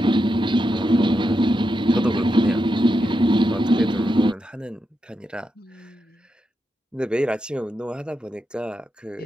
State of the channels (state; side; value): normal; both; correlation 0.86